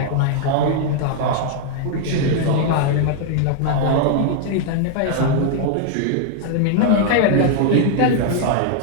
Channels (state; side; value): different; both; correlation 0.00